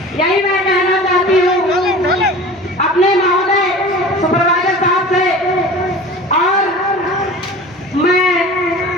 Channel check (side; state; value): both; normal; correlation 0.38